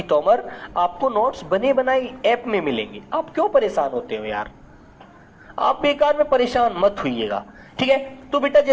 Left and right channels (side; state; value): both; identical; correlation 1.00